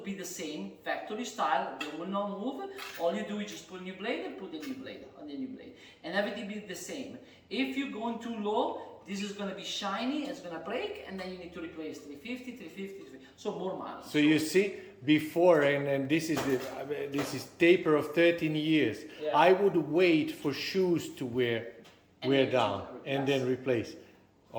be the same, factory style, they will not move. All you do is just put a new blade and put the new blade on the new blade. And everything will be the same. If you're going too low, this is going to be shiny, it's going to break, and then you need to replace 350, 350, 350. So more money. So you see, before, and this is taper of 13 years, yeah. I would wait for shoes to wear down and then replace.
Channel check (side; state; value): both; identical; correlation 1.00